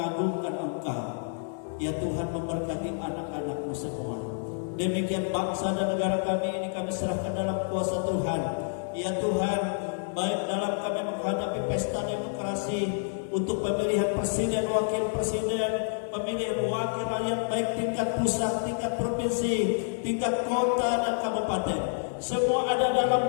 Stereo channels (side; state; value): right; silent; digital silence